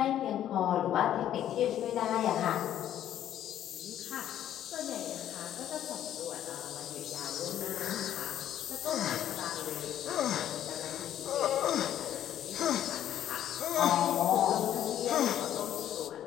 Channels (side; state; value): right; quieter; 11.2 dB